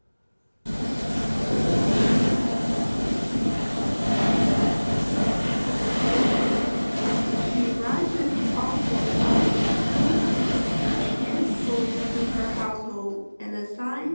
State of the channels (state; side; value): inverted; both; correlation -1.00